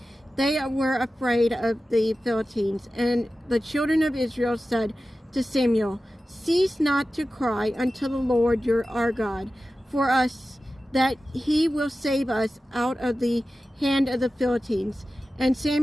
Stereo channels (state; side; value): normal; both; correlation 0.94